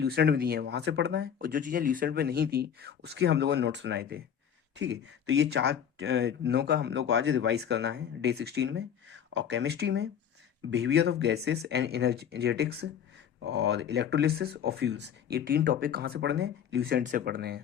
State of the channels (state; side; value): quieter; right; 8.5 dB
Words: में दी हैं वहाँ से पढ़ना है, और जो चीज़ें ल्यूसेंट में नहीं थी उसके हम लोगों ने नोट्स बनाए थे। ठीक है, तो ये चार दिनों का हम लोग को आज रिवाइज करना है डे 16 में। और केमिस्ट्री में behaviour of gases and energetics और इलेक्ट्रोलिसिस और फ्यूल्स, ये 3 टॉपिक कहाँ से पढ़ने हैं? ल्यूसेंट से पढ़ने